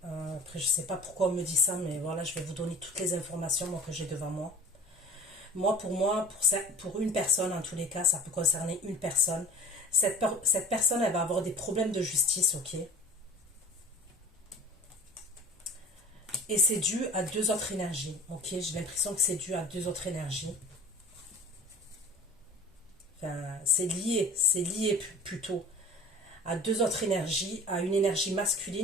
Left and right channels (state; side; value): normal; both; correlation 0.42